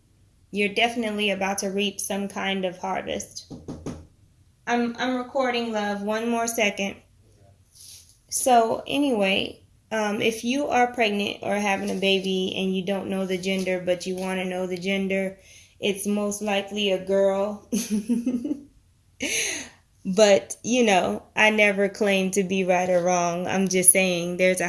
You're definitely about to reap some kind of harvest. I'm recording, love. One more second. So anyway, if you are pregnant or having a baby and you don't know the gender, but you want to know the gender, it's most likely a girl. But, you know, I never claim to be right or wrong. I'm just saying there's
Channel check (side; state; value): both; identical; correlation 1.00